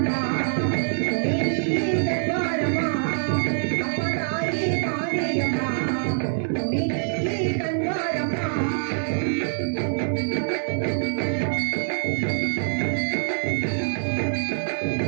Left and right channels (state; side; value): silent; left; digital silence